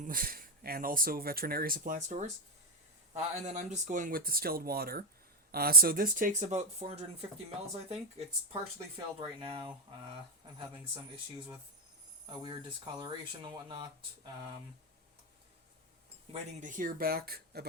also veterinary supply stores. And then I'm just going with distilled water. So this takes about 450 mils, I think. It's partially filled right now. I'm having some issues with a weird discoloration and whatnot. Waiting to hear back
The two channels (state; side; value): normal; both; correlation 0.08